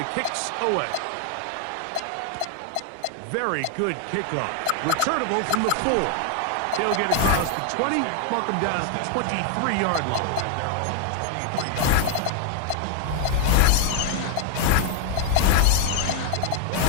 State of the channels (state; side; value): different; both; correlation 0.00